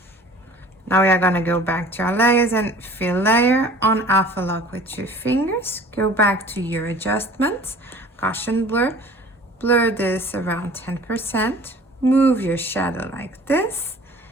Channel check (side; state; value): both; normal; correlation 0.47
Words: Now we are gonna go back to our layers and fill layer, on alpha lock with 2 fingers, go back to your adjustments, Gaussian blur, blur this around 10%, move your shadow like this,